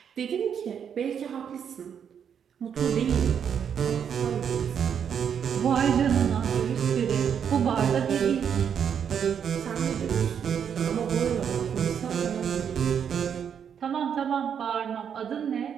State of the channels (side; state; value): left; quieter; 7.9 dB